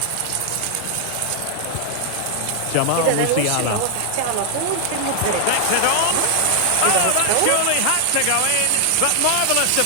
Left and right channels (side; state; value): both; different; correlation 0.00